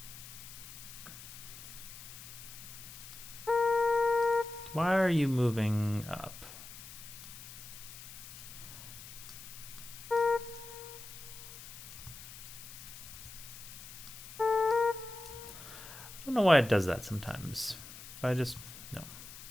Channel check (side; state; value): left; noise; hiss, 14 dB below the sound